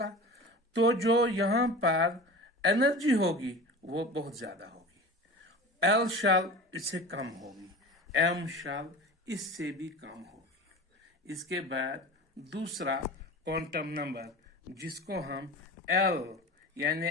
तो जो यहां पर एनर्जी होगी वो बहुत ज्यादा होगी। एल शेल इससे कम होगी, एम शेल इससे भी कम होगी। इसके बाद दूसरा क्वांटम नंबर जिसको हम एल यानी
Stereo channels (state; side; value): normal; both; correlation 0.34